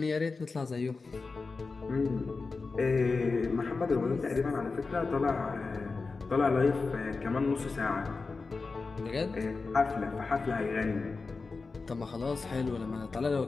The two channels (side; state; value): right; quieter; 4.2 dB